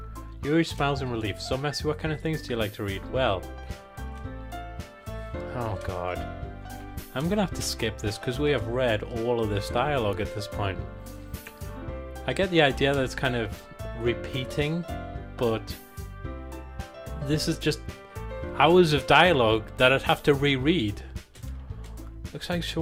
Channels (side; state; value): both; identical; correlation 1.00